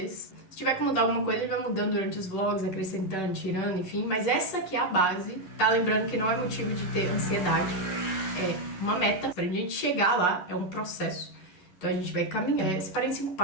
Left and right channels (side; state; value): right; late; 10 ms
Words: Se tiver que mudar alguma coisa, ele vai mudando durante os vlogs, acrescentando, tirando, enfim. Mas essa aqui é a base, tá? Lembrando que não é motivo de ter ansiedade, é uma meta. Pra gente chegar lá, é um processo. Então a gente vai caminhar. Separei em 5